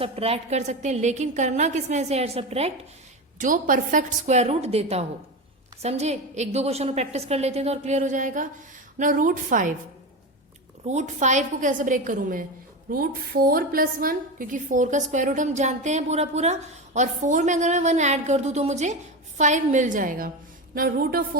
कर सकते हैं, लेकिन करना किसमें से ऐड सब्ट्रैक्ट, जो परफेक्ट स्क्वायर रूट देता हो। समझे? एक दो क्वेश्चन प्रैक्टिस कर लेते हैं तो और क्लियर हो जाएगा ना। रूट 5 को कैसे ब्रेक करूं मैं, रूट 4 + 1, क्योंकि 4 का स्क्वायर रूट हम जानते हैं पूरा पूरा, और 4 में अगर मैं 1 ऐड कर दूं तो मुझे 5 मिल जाएगा ना। रूट ऑफ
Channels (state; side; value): normal; both; correlation 0.20